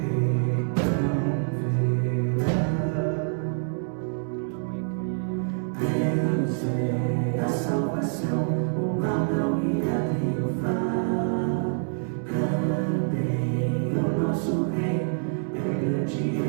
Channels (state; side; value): silent; left; 61 dB below the other